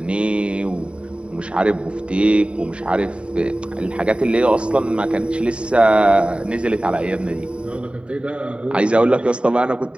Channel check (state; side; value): late; left; 0.057 ms